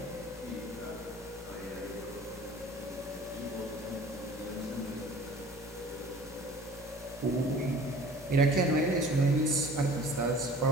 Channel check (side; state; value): both; normal; correlation 0.46